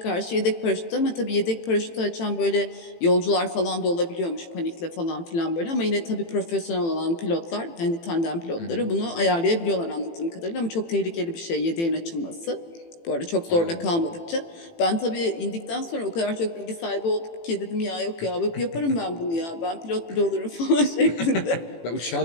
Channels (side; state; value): right; late; 18 ms